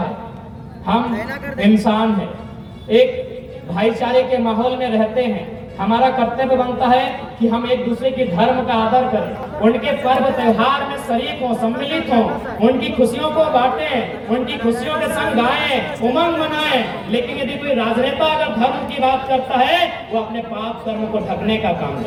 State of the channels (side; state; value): both; identical; correlation 1.00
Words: हम इंसान हैं, एक भाईचारे के माहौल में रहते हैं। हमारा कर्तव्य बनता है कि हम एक दूसरे के धर्म का आदर करें, उनके पर्व त्योहार में शरीक हों, सम्मिलित हों, उनकी खुशियों को बांटें, उनकी खुशियों के संग गाएं, उमंग मनाएं। लेकिन यदि कोई राजनेता अगर धर्म की बात करता है, वो अपने पाप कर्म को ढकने का काम